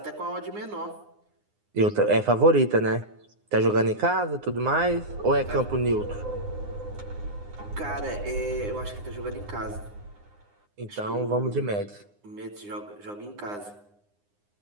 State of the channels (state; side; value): late; left; 9.7 ms